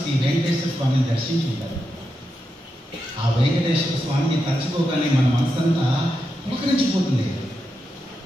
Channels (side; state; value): both; normal; correlation 0.87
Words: శ్రీ వెంకటేశ్వర స్వామిని దర్శించుకుంటారు. ఆ వెంకటేశ్వర స్వామిని తలుచుకోగానే మన మనసంతా పులకరించిపోతుంది.